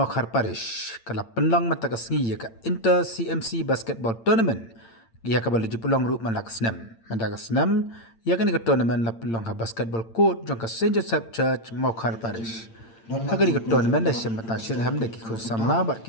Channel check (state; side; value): late; right; 8.8 ms